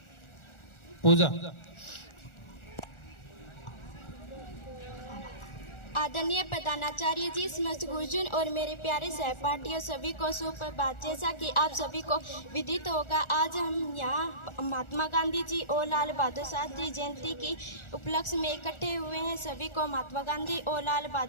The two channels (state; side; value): late; right; 1.4 ms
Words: पूजा। आदरणीय प्रधानाचार्य जी, समस्त गुरुजन और मेरे प्यारे सहपाठियों सभी को सुप्रभात। जैसा कि आप सभी को विदित होगा, आज हम यहाँ महात्मा गांधी जी और लाल बहादुर शास्त्री जयंती की उपलक्ष्य में इकट्ठे हुए हैं। सभी को महात्मा गांधी और लाल